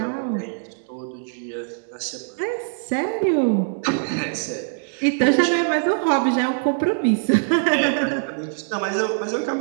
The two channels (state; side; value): silent; left; digital silence